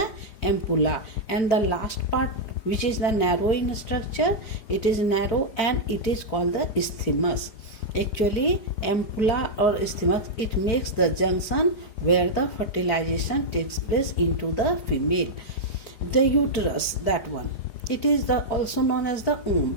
ampulla, and the last part, which is the narrow in structure, it is narrow and it is called the isthmus. Actually, ampulla or isthmus, it makes the junction where the fertilization takes place into the female. The uterus, that one, it is also known as the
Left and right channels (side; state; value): right; late; 4.9 ms